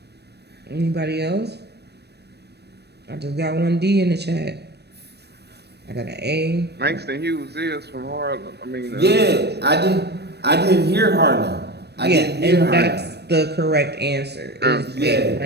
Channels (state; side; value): late; left; 0.48 ms